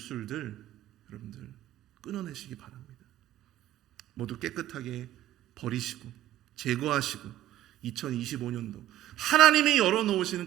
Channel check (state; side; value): quieter; left; 13.2 dB